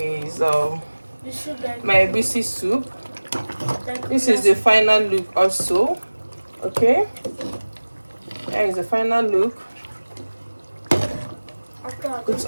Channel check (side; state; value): both; inverted; correlation -1.00